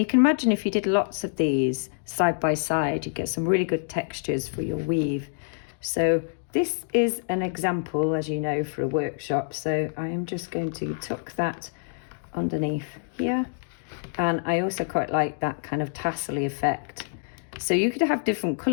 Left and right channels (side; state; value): right; silent; digital silence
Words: can imagine if you did lots of these side by side, you get some really good textures for your weave. So this is an example, as you know, for a workshop, so I am just going to tuck that underneath here. And I also quite like that kind of tassel-y effect. So you could have different